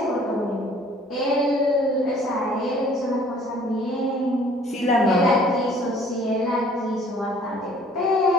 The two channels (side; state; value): both; normal; correlation 0.55